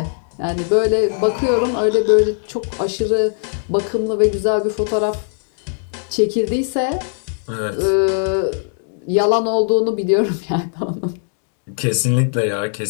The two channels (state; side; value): silent; right; digital silence